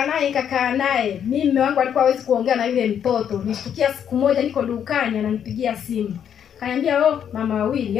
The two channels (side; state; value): right; quieter; 8.7 dB